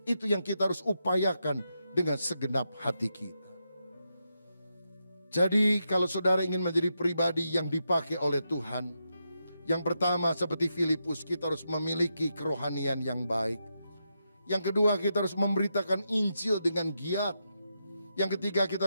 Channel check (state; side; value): inverted; both; correlation -0.84